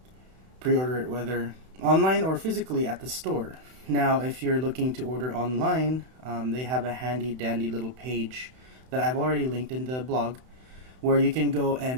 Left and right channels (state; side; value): late; left; 31 ms